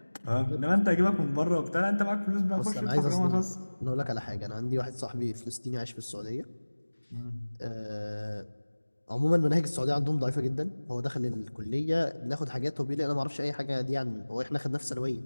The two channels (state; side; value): inverted; both; correlation -1.00